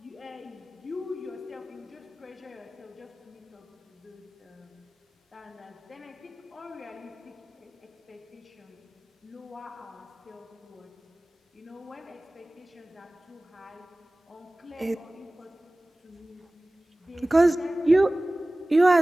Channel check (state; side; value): normal; both; correlation 0.98